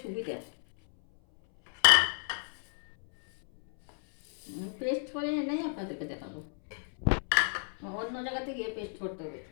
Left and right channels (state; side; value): silent; right; 56 dB below the other